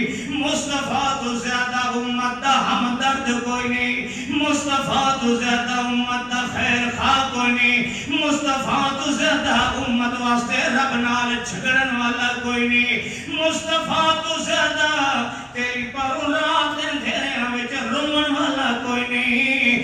مصطفیٰ تو زیادہ امت دا ہمدرد کوئی نہیں مصطفیٰ تو زیادہ امت دا خیر خواہ کوئی نہیں مصطفیٰ تو زیادہ امت واسطے رب نال جھگڑن والا کوئی نہیں مصطفیٰ تو زیادہ تیری پر رات اندھیرے وچ رومن والا کوئی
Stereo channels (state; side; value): identical; both; correlation 1.00